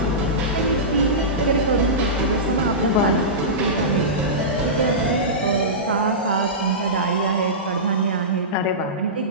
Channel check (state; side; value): normal; both; correlation -0.18